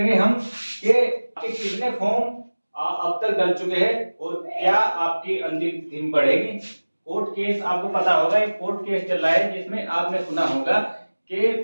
हम कि आपके कितने फॉर्म अब तक डल चुके हैं और क्या आपकी अंतिम तिथि बढ़ेगी। कोर्ट केस आपको पता होगा, एक कोर्ट केस चल रहा है जिसमें आपने सुना होगा कि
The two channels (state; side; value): inverted; both; correlation -1.00